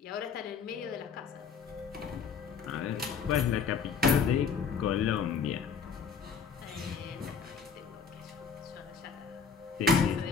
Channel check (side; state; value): right; quieter; 6.0 dB